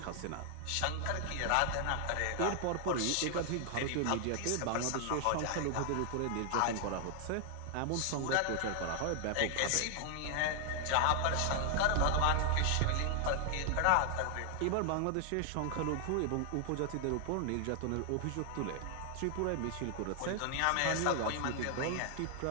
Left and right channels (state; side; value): different; both; correlation 0.00